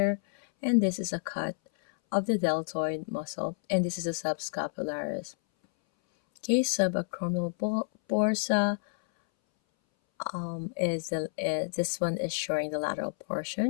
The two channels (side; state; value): right; silent; 58 dB below the other